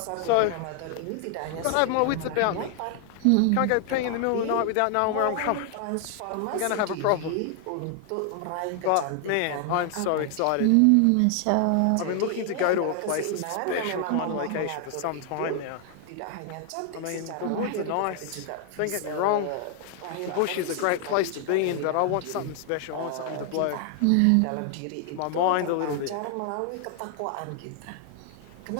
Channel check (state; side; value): different; both; correlation 0.00